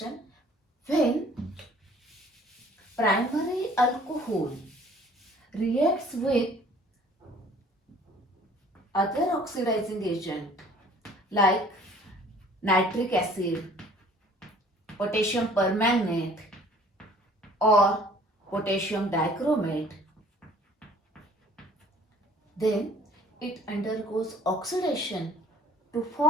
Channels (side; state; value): both; normal; correlation 0.53